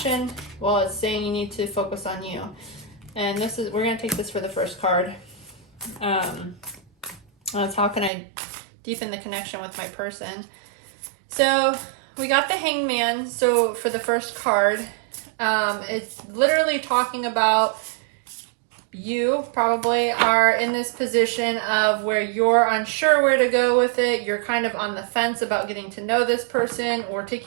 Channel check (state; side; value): drops out; left; at 8.1 s